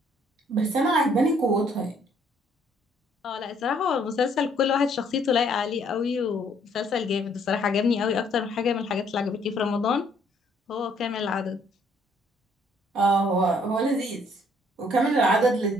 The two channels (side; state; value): both; normal; correlation 0.65